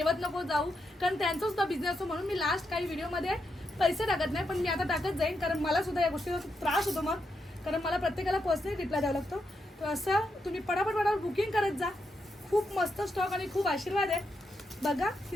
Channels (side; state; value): both; normal; correlation 0.83